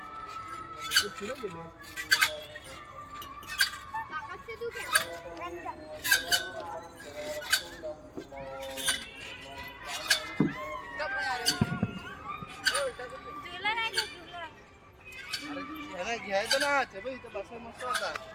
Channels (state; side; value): identical; both; correlation 1.00